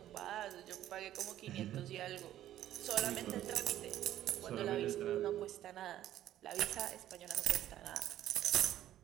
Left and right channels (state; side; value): quieter; left; 12.5 dB